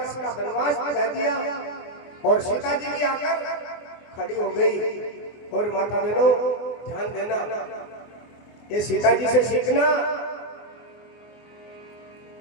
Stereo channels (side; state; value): right; late; 24 ms